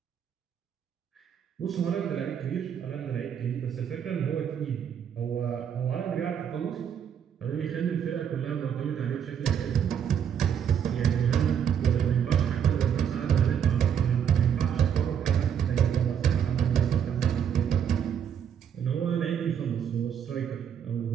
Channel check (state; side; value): quieter; left; 8.4 dB